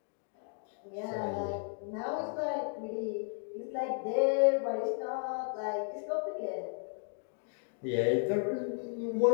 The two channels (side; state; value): right; silent; 55 dB below the other